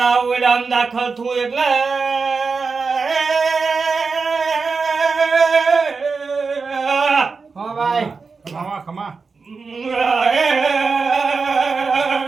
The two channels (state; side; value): quieter; left; 4.7 dB